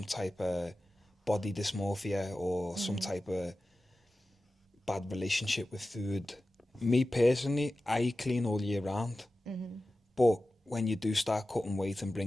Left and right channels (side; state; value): both; normal; correlation 0.95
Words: type of body dysmorphia or some type of bad relationship with food. Me personally, I eat clean all year round. But when you do start cutting weight and